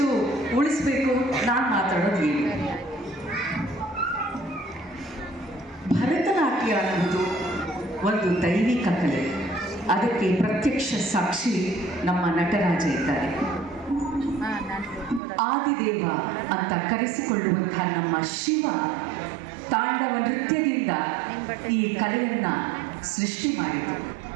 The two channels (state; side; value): drops out; left; at 15.2 s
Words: ಉಳಿಸ್ಬೇಕು. ನಾನು ಮಾತಾಡೋದು ಏನು, ಭರತನಾಟ್ಯ ಅನ್ನುವುದು ಒಂದು ದೈವಿಕ ಕಲೆ. ಅದಕ್ಕೆ ಪ್ರತ್ಯಕ್ಷ ಸಾಕ್ಷಿ ನಮ್ಮ ನಟರಾಜ ಇದ್ದಾರೆ. ಆದಿದೇವ ಅಂತ ಕರೆಸಿಕೊಳ್ಳುವಂತಹ ನಮ್ಮ ಶಿವ ತಾಂಡವ ನೃತ್ಯದಿಂದ ಈ ಕಲೆಯನ್ನು ಸೃಷ್ಟಿ ಮಾಡಿತು.